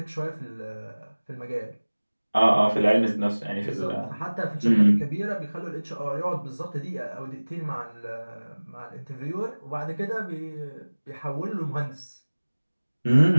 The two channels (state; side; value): inverted; both; correlation -1.00